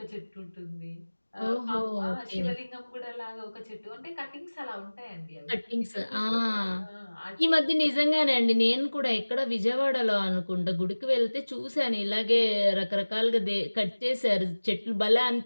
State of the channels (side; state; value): both; inverted; correlation -1.00